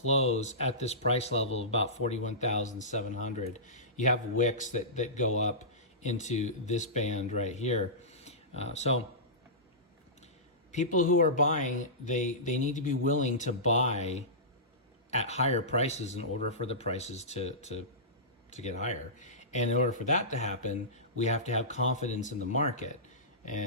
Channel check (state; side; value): normal; both; correlation -0.20